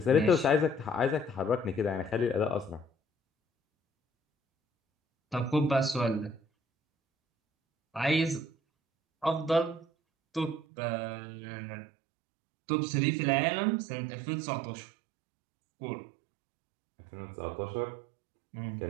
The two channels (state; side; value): drops out; left; at 10.6 s